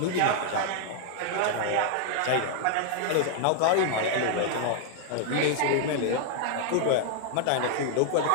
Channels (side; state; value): both; different; correlation 0.00